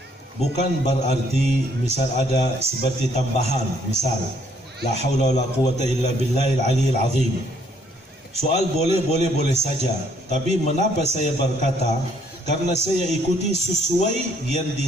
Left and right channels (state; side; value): normal; both; correlation 0.66